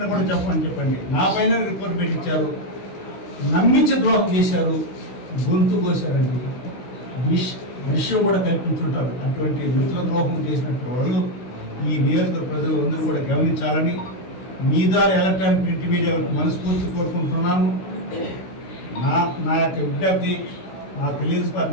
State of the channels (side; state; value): right; late; 16 ms